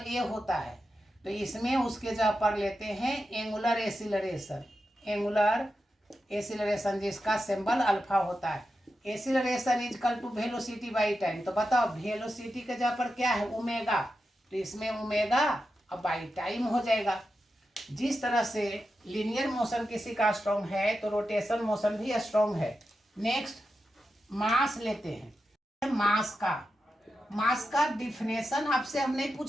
ए होता है, तो इसमें उसके जगह पर लेते हैं एंगुलर एसिलरेशन। एंगुलर एसिलरेशन जिसका सिंबल अल्फा होता है। Acceleration is equal to velocity by time. तो बताओ, वेलोसिटी के जगह पर क्या है, ओमेगा, तो इसमें ओमेगा और बाई टाइम हो जाएगा। जिस तरह से लीनियर मोशन किसी का स्ट्रॉन्ग है, तो रोटेशन मोशन भी स्ट्रॉन्ग है। नेक्स्ट मास लेते हैं। मास का डिफिनेशन आपसे हम नहीं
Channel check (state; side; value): normal; both; correlation 0.90